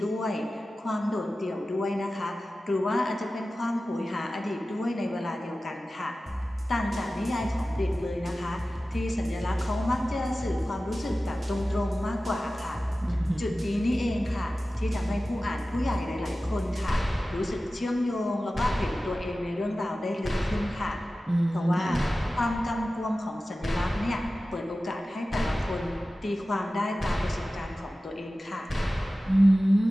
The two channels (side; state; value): both; normal; correlation 0.95